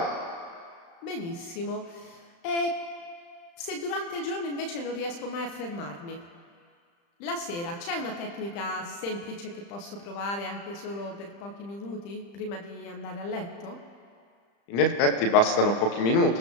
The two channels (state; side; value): late; right; 35 ms